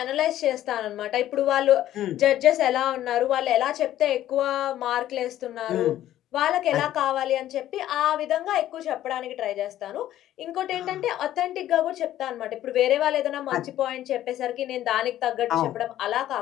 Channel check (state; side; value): quieter; right; 12.8 dB